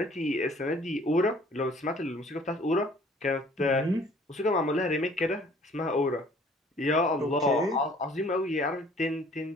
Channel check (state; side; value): normal; both; correlation 0.55